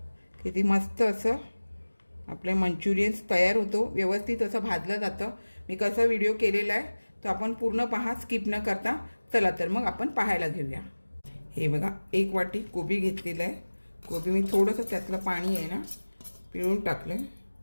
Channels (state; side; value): inverted; both; correlation -1.00